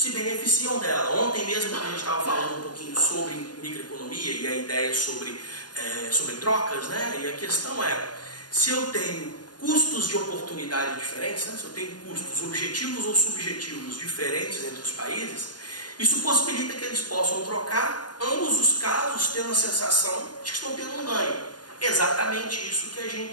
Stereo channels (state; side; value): late; right; 0.70 ms